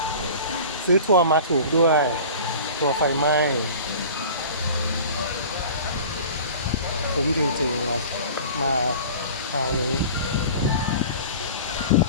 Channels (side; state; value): both; inverted; correlation -0.40